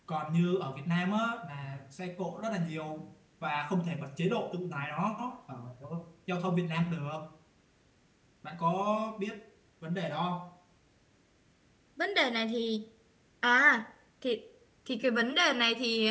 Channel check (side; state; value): both; identical; correlation 1.00